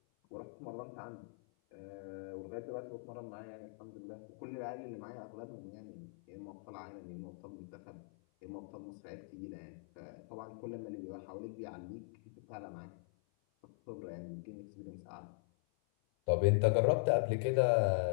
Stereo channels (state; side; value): silent; right; 50 dB below the other